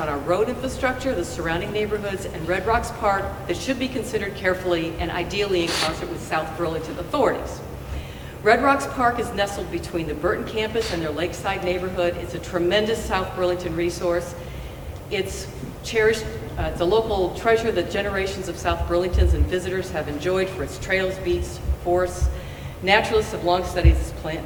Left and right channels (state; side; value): identical; both; correlation 1.00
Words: our road infrastructure, the surrounding neighborhoods, and Red Rocks Park that should be considered carefully and ideally in concert with South Burlington authorities. Red Rocks Park is nestled between the Burton campus and their lakeside neighborhood. It's a tremendous South Burlington resource. It's cherished, it's a local treasure that generations of South Burlingtons and visitors have enjoyed for its trails, beats, forests. Naturalists have long studied this plant